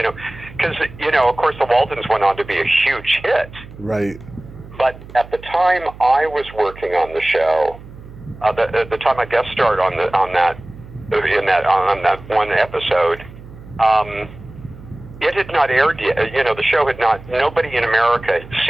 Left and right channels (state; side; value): noise; right; hum, 17 dB below the sound